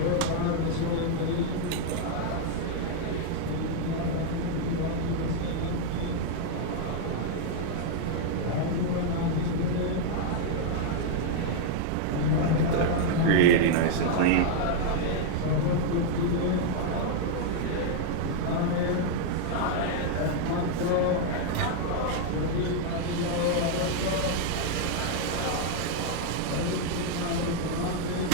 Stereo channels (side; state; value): both; different; correlation 0.00